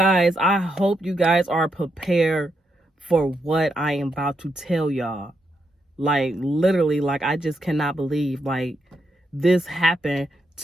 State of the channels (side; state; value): both; normal; correlation 0.81